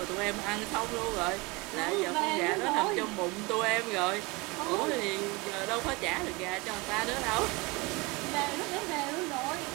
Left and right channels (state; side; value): quieter; left; 25.4 dB